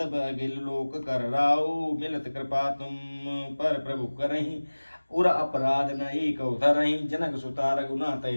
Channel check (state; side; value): inverted; both; correlation -1.00